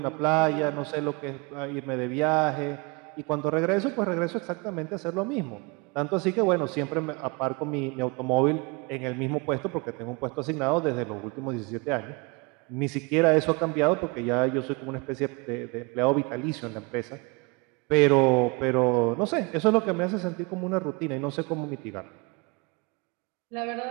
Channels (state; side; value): quieter; left; 29.0 dB